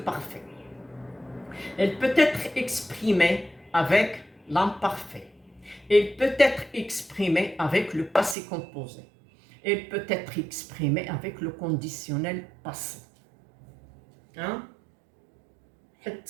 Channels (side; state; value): left; drops out; at 8.3 s